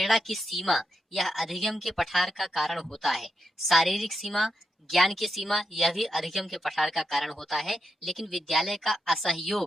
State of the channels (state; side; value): normal; both; correlation 0.84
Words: की सीमा यह अधिगम के पठार का कारण होता है। शारीरिक सीमा, ज्ञान की सीमा यह भी अधिगम के पठार का कारण होता है, लेकिन विद्यालय का